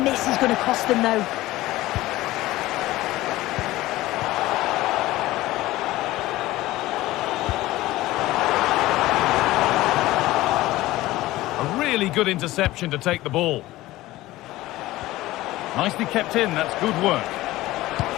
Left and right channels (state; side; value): quieter; right; 17.3 dB